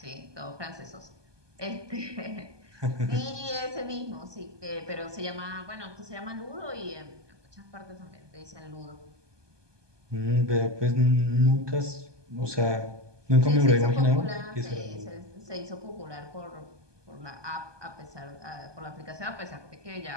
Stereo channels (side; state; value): left; late; 1.2 ms